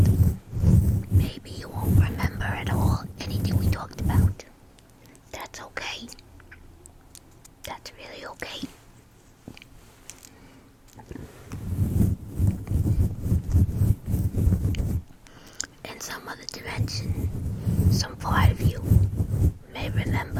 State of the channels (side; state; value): both; identical; correlation 1.00